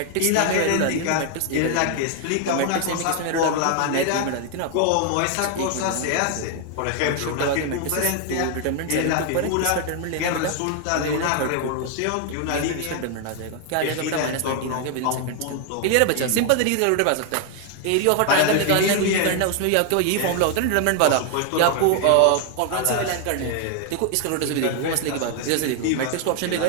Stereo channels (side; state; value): both; different; correlation 0.00